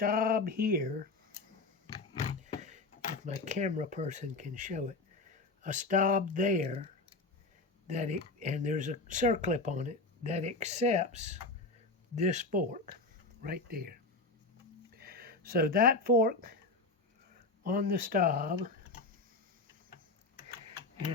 here, if my camera person can show it. A stop there, and there's a circlip on it that accepts this fork right there. So that fork on the stop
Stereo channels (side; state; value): right; quieter; 3.5 dB